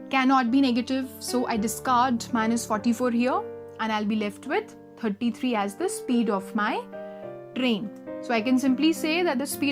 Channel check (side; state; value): both; identical; correlation 1.00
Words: cannot be negative, so I discard minus 44 here and I'll be left with 33 as the speed of my train. So I can simply say that the